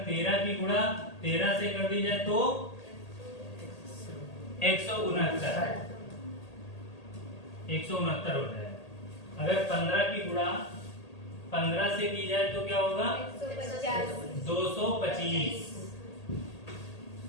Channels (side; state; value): right; late; 1.8 ms